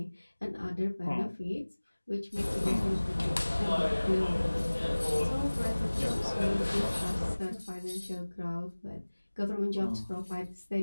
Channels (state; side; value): inverted; both; correlation -1.00